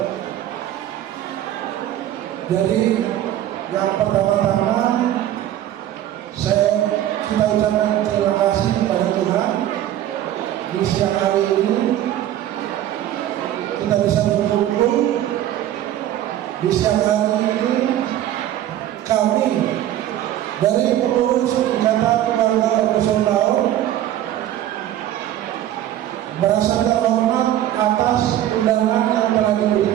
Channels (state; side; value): quieter; left; 12.4 dB